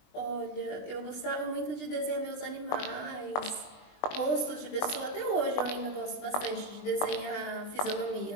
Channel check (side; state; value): right; late; 20 ms